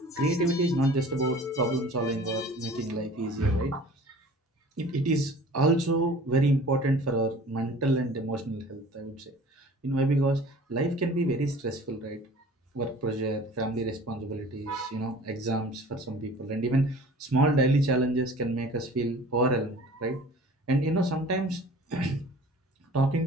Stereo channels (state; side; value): normal; both; correlation 0.45